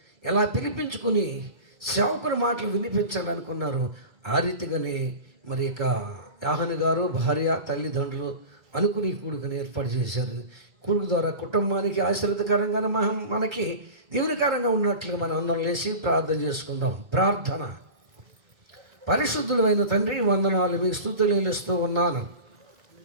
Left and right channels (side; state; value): left; late; 2.3 ms